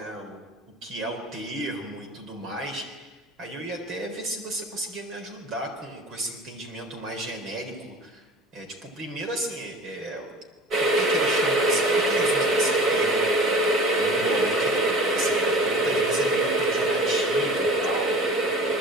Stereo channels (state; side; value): normal; both; correlation 0.40